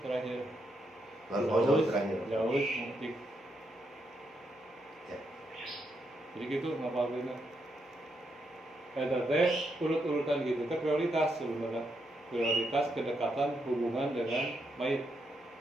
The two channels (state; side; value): normal; both; correlation 0.80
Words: terakhir. baru jauh terakhir. Jauh mutik. Ya. Jadi gitu ngapalin. Teh urut-urutan gitu. Itu prioritas sebenarnya. Prioritas kedekatan hubungan dengan mayit.